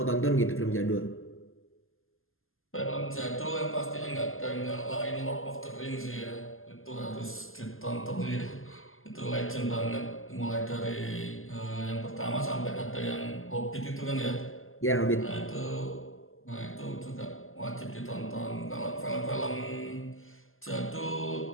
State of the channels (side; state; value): right; late; 0.60 ms